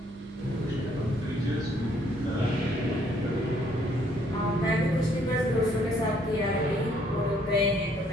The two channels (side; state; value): both; normal; correlation 0.66